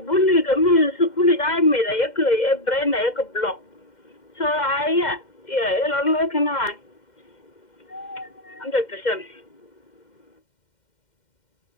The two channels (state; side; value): late; right; 2.1 ms